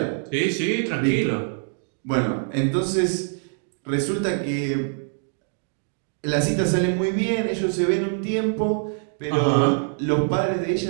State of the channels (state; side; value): silent; left; 57 dB below the other